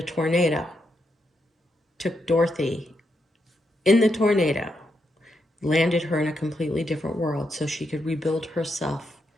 tornado, took Dorothy in the tornado, landed her in a completely different world so she could rebuild herself,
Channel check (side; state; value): both; normal; correlation 0.81